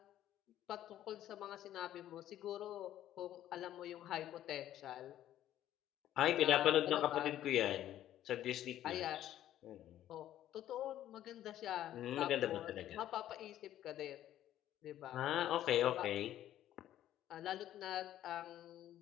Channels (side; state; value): right; quieter; 12.3 dB